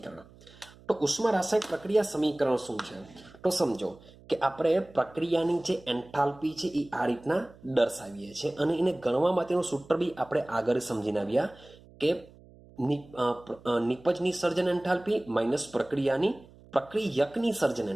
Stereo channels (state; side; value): noise; right; hum, 24 dB below the sound